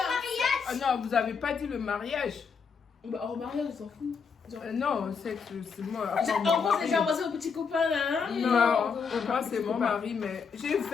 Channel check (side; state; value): right; quieter; 5.8 dB